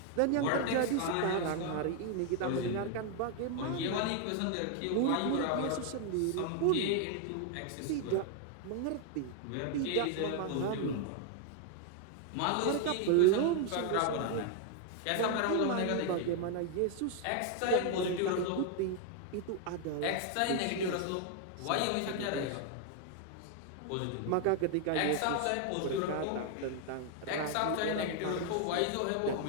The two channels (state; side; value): different; both; correlation 0.00